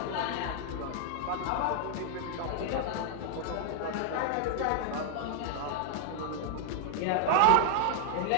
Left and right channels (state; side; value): different; both; correlation 0.00